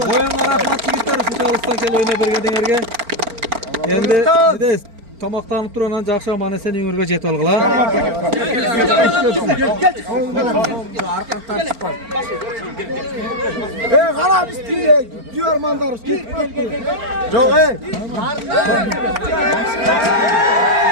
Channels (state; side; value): late; left; 4.4 ms